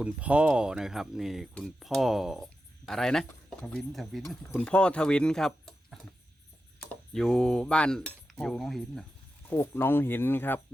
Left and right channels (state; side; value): normal; both; correlation 0.90